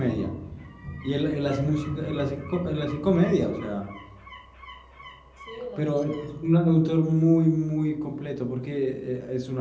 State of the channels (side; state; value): both; identical; correlation 1.00